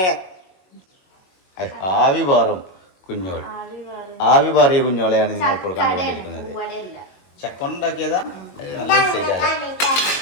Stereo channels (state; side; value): late; right; 22 ms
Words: ആവി പാറും കുഞ്ഞോൾ, ആവി പാറിയ കുഞ്ഞോളെയാണ് നിങ്ങൾ ഇപ്പോൾ കണ്ടുകൊണ്ടിരിക്കുന്നത്. ചക്ക ഉണ്ടാക്കിയതാ?